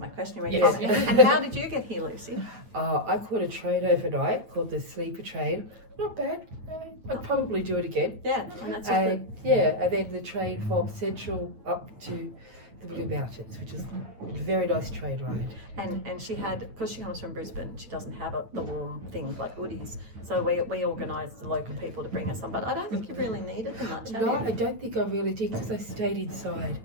question. And how did you get here, Lucy? I caught a train overnight called the Sleeper Train. Not bad. I'd probably do it again. Yeah, and that's good. And then the train from Central up to the Blue Mountains, which is a very nice train ride. And she had, because she comes from Brisbane, she doesn't have the warm things like hoodies. So we organised the local people to bring us some, but I don't think you really needed them much, have No, you? I don't think I really did because I stayed inside.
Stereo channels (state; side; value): late; left; 9.1 ms